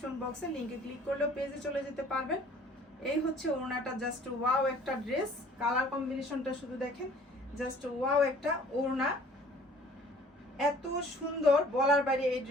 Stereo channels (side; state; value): both; normal; correlation 0.52